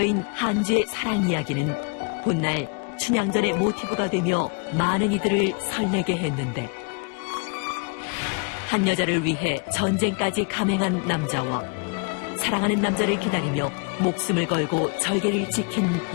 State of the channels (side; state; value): right; quieter; 32.8 dB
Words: 한주의 사랑 이야기는 훗날 춘향전의 모티브가 되며 많은 이들을 설레게 했는데 한 여자를 위해 전쟁까지 감행한 남자와 사랑하는 남자를 기다리며 목숨을 걸고 절개를 지킨